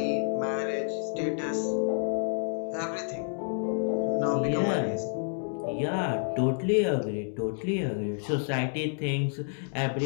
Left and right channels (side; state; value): right; silent; digital silence